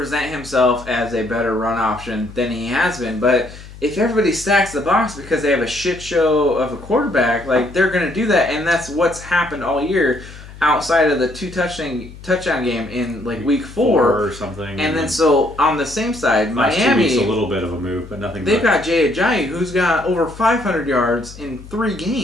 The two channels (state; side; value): noise; left; hum, 17 dB below the sound